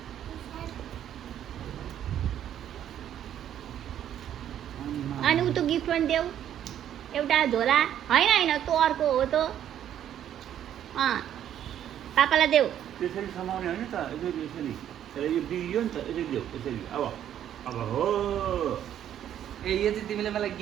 अनि उ त गिफ्ट पनि देऊ एउटा झोला होइन होइन तँ अर्को हो त पापालाई देऊ त्यसरी समाउने होइन त यसरी यसरी तर यो बिग्रियो नि त यसरी देऊ यसरी अब हो ए यो चाहिँ तिमीले मलाई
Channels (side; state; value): left; quieter; 10.5 dB